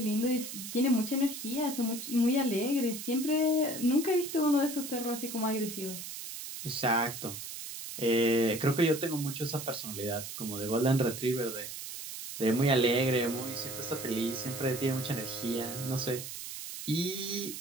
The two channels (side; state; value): right; noise; hiss, 9 dB below the sound